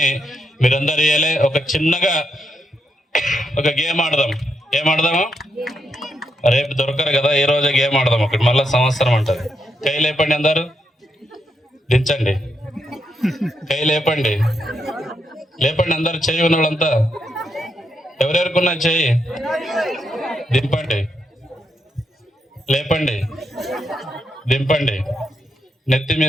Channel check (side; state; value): both; normal; correlation 0.81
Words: మీరందరూ ఇయ్యాలి. ఒక చిన్నగా ఒక గేమ్ ఆడదాం. ఏం ఆడదాము? రేపు దొరకరు కదా, ఈ రోజే గేమ్ ఆడదాం. ఒకటి మళ్ళీ సంవత్సరం అంటది. కై లేపండి, అందరు దించండి. కై లేపండి, లేపండి అందరు. చెయ్యి ఉన్న వాళ్ళంతా ఎవరెవరుకున్నా చెయ్యి దింపండి. లేపండి, దింపండి. నెత్తి